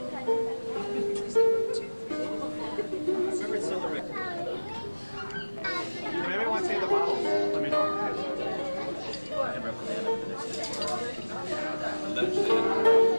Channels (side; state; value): both; inverted; correlation -1.00